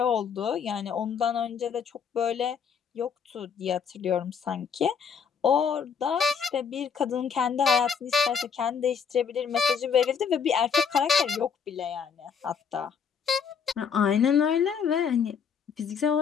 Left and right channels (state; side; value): quieter; right; 6.7 dB